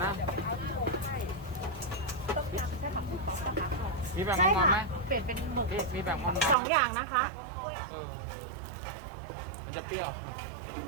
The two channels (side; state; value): left; drops out; at 6.6 s